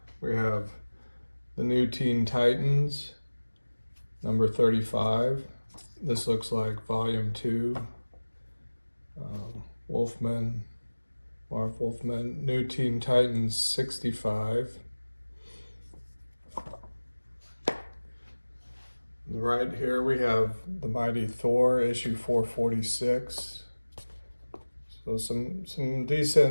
we have the New Teen Titans, number 35. This looks like volume 2. Wolfman, Marv Wolfman, New Teen Titans 65. Right here we have the Mighty Thor, issue 446. So some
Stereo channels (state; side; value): inverted; both; correlation -1.00